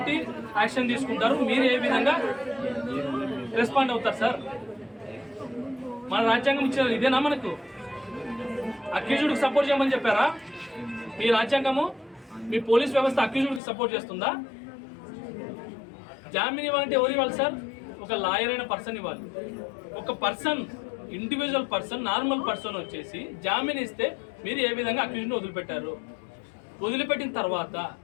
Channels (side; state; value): right; drops out; at 13.6 s